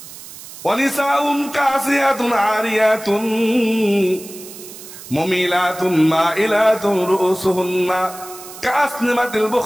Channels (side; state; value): right; noise; hiss, 15 dB below the sound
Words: ওয়ানিসাউন কাসিয়াতুন আরিয়াতুন মুমিলাতুন মাইলাতুন রুসুহুন্না কাসনিমাতিল